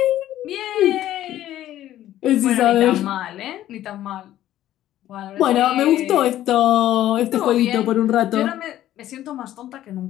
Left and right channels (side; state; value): right; quieter; 13.1 dB